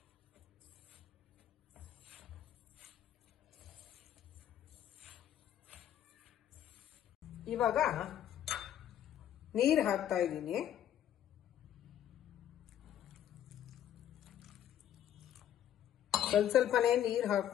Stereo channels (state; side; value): quieter; right; 10.8 dB